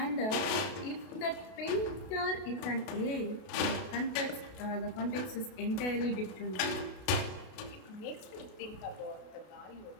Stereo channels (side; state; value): right; late; 33 ms